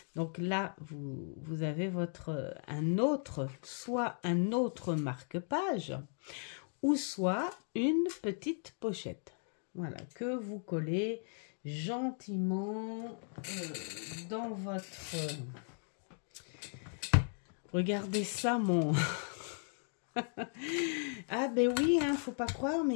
donc là vous avez soit un autre marque-page, ou soit une petite pochette, voilà, que vous collez gentiment dans votre... Regardez ça, mon... Ah ben oui, hein, faut pas croire,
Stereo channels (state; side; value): silent; right; 53 dB below the other